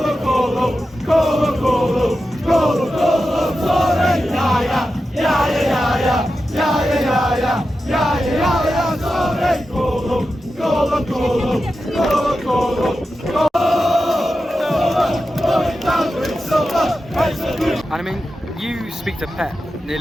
And I mean, you speak to Pep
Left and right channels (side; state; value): both; normal; correlation 0.91